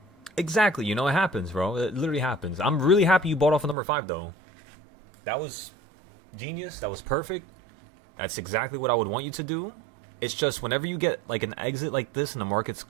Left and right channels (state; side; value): drops out; left; at 3.8 s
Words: exactly, you know, it happens, bro. It literally happens. I'm really happy you bought off of number 5, though. That was genius. That was perfect. That's exactly what I would want you to do. It's just whenever you get like an exit like this and the market's